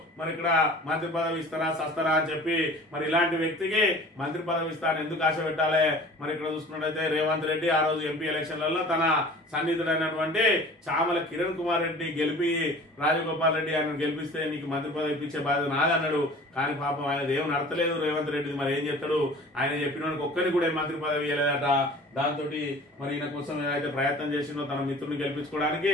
మరి ఇక్కడ మంత్రి పదవి ఇస్తారా సస్తారా అని చెప్పి మరి ఇలాంటి వ్యక్తికి మంత్రి పదవి ఇస్తాను ఎందుకు ఆశ పెట్టాలి? మరి ఇక్కడ చూసుకున్నట్టయితే రేవంత్ రెడ్డి ఆ రోజు ఎంపీ ఎలక్షన్లలో తన సన్నిహితుడైనటువంటి చామల కిరణ్ కుమార్ రెడ్డి గెలిపి రాజగోపాల్ రెడ్డి ఆయన గెలిపిస్తే నీకు మంత్రి పదవి ఇప్పించే బాధ్యత నాదన్నాడు. కానీ పాపం ఆయన ఏం నడతలేదు రేవంత్ రెడ్డి. మరి ఏం చెప్తాడు? ఆయన చెప్పిన ఒక్కరికి కూడా మంత్రి పదవి ఇవ్వలేదట. దాంతో మరి ఈయన కోసం ఏదైతే ప్రయత్నం చేసిందో తన మిత్రుని గెలిపించుకోవడానికి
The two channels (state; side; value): normal; both; correlation 0.44